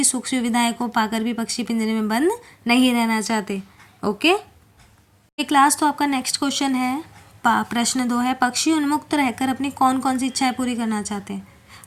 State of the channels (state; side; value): identical; both; correlation 1.00